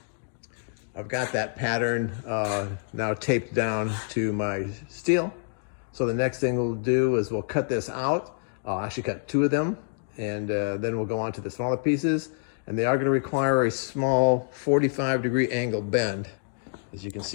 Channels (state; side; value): silent; right; digital silence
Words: I've got that pattern now taped down to my steel. So the next thing we'll do is we'll cut this out. I'll actually cut two of them, and then we'll go on to the smaller pieces. And they are going to require a small 45-degree angle bend, as you can